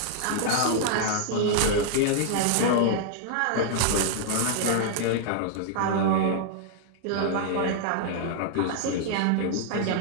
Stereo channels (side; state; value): both; different; correlation -0.01